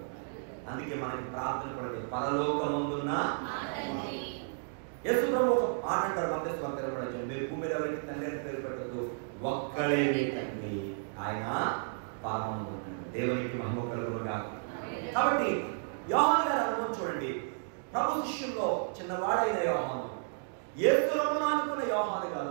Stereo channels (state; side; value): silent; left; digital silence